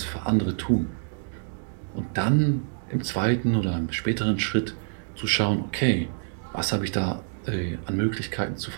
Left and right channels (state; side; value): silent; left; digital silence